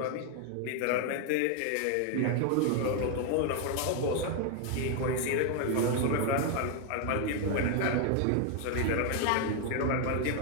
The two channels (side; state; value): both; different; correlation 0.01